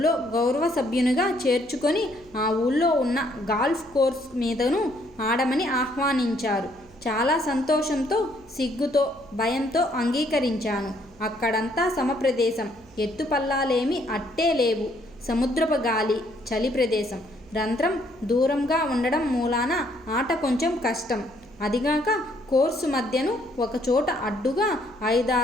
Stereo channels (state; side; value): noise; right; hum, 26 dB below the sound